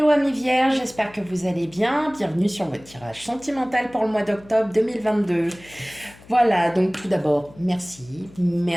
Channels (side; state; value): left; noise; hum, 23 dB below the sound